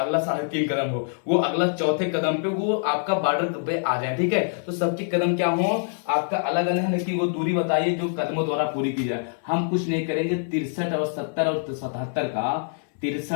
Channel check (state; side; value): silent; right; 59 dB below the other